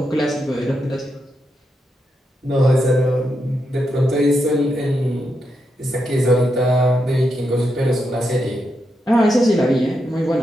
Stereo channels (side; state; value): both; normal; correlation 0.84